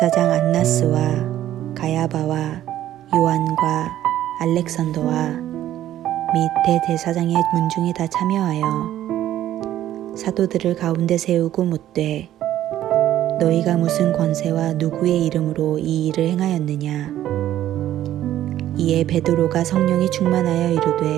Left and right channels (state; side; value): quieter; left; 12.6 dB